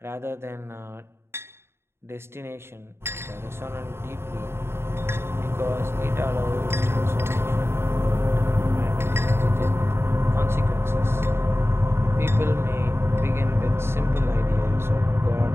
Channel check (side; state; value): left; late; 0.12 ms